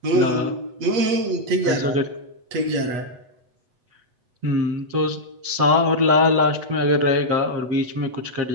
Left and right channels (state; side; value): late; left; 8.2 ms